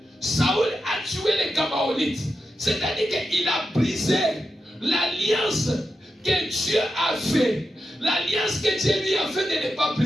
Saül a tué les Gabaonites. C'est-à-dire qu'il a brisé l'alliance que Dieu a fait. L'alliance que Dieu lui a fait de ne pas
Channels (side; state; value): both; normal; correlation 0.88